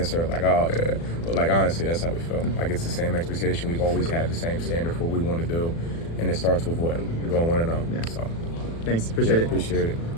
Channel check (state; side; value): late; right; 36 ms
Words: like, oh, yeah. But, like, honestly, that's how we feel. Like, it's the same expectation. We've always had the same standard for what we want to do, and it starts with what? Going 1-0. Yeah. So, thanks. Appreciate it. Appreciate it.